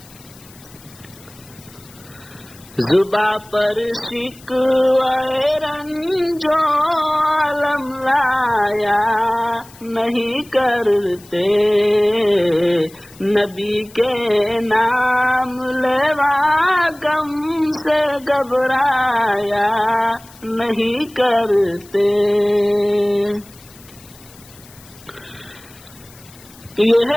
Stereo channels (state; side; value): noise; left; hiss, 24 dB below the sound